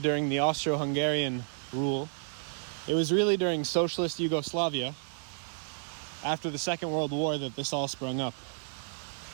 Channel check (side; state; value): left; silent; digital silence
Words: during the Austro-Hungarian rule, it was really during socialist Yugoslavia, after the Second World War, that this all sprung up.